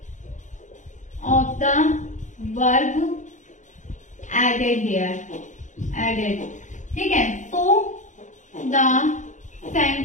of the verb added here, added, ठीक है। So the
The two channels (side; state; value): right; late; 0.36 ms